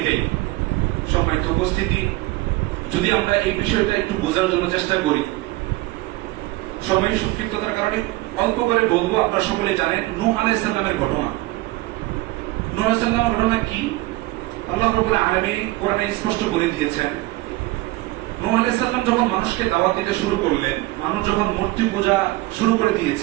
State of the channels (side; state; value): left; quieter; 19.7 dB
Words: সম্মানিত উপস্থিতি, যদি আমরা এই বিষয়টা একটু বোঝার জন্য চেষ্টা করি, সময় সংক্ষিপ্ততার কারণে অল্প করে বলবো। আপনারা সকলে জানেন নূহ আলাইহিস সালামের ঘটনা। নূহ আলাইহিস সালামের ঘটনা কি আল্লাহ রাব্বুল আলামিন কোরআনে স্পষ্ট বলে দিয়েছেন। নূহ আলাইহিস সালাম যখন মানুষকে দাওয়াত দিতে শুরু করলেন, মানুষ যখন মূর্তি পূজা শুরু করে